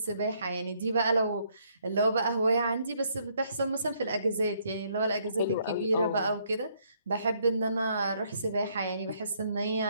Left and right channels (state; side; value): inverted; both; correlation -0.70